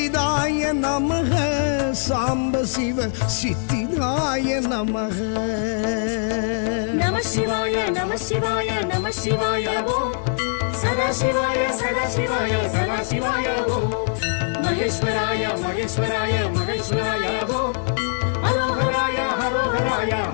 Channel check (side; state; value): right; silent; digital silence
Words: நமக சாம்ப சிவ சித்திதாய நமக நம சிவாய நம சிவாய நம சிவாய ஓம் சதா சிவாய சதா சிவாய சதா சிவாய ஓம் மகேஸ்வராய மகேஸ்வராய மகேஸ்வராய ஓம் ஹரோஹராய ஹரோஹராய